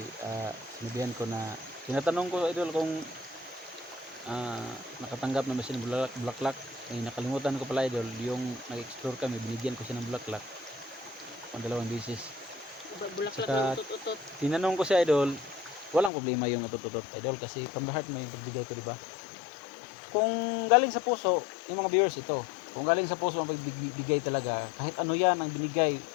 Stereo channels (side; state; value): right; drops out; at 16.1 s